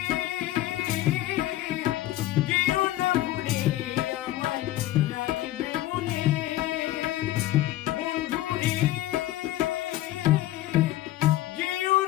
যেও না ভুলে আমায় রাখবে মনে বন্ধুরে যেও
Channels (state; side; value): quieter; right; 15.2 dB